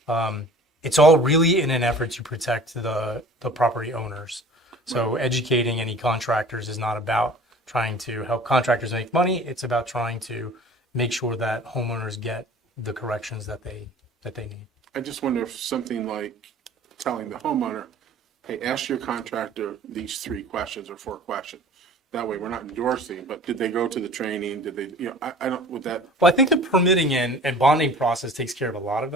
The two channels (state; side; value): normal; both; correlation 0.45